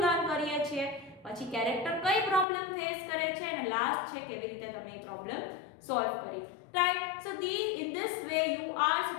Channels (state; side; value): drops out; right; at 2.5 s